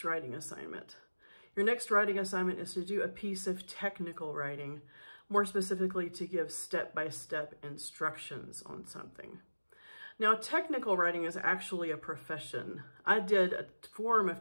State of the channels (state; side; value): inverted; both; correlation -1.00